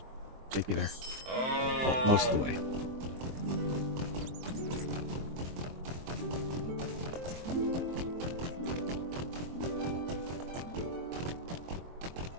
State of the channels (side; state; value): left; late; 23 ms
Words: Take me there. Well, most of the way.